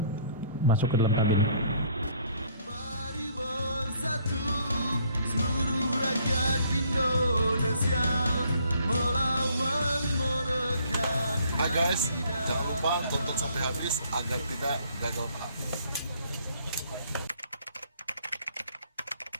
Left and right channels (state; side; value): inverted; both; correlation -0.61